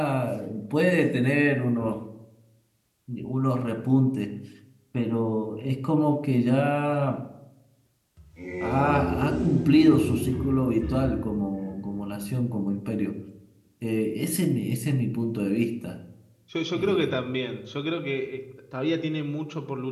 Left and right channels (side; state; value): both; identical; correlation 1.00